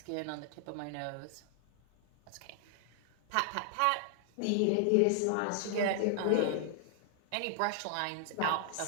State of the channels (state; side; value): different; both; correlation 0.00